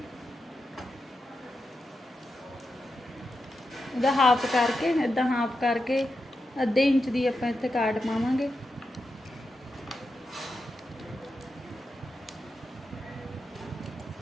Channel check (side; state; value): both; normal; correlation 0.88